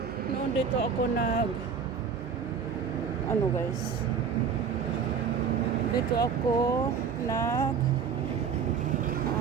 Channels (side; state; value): left; quieter; 6.4 dB